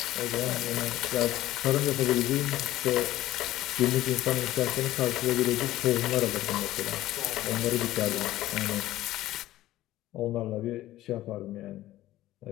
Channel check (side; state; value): right; quieter; 15.2 dB